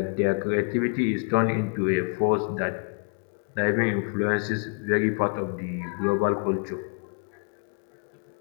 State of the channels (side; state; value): right; quieter; 37.4 dB